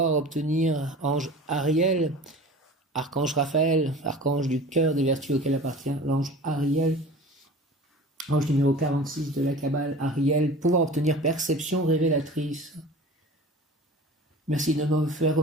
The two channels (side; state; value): both; normal; correlation 0.39